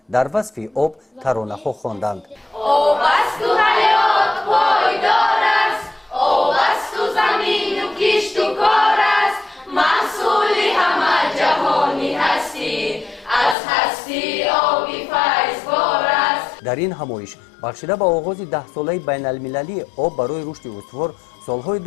در وصف آب ترانه‌ها خواندند. آب است و حیات پایدار است، آب است و زمین و کشت و کار است، محصول همه جهانی هستی، از هستی آبی فیضبار است. در این همایش بخشیده به آغاز 10 ساله بین المللی آب برای رشد استوار سالهای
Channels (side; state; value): right; drops out; at 13.6 s